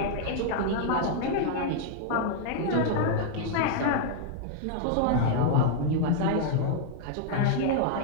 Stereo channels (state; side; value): different; both; correlation -0.01